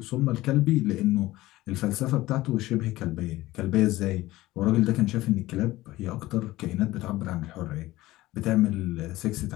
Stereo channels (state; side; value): quieter; right; 17.5 dB